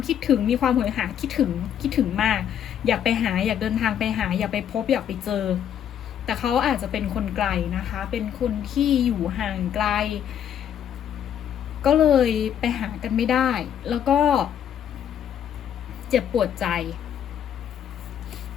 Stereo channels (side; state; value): right; quieter; 9.5 dB